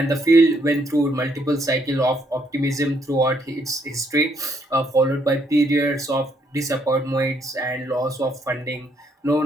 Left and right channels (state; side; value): normal; both; correlation 0.71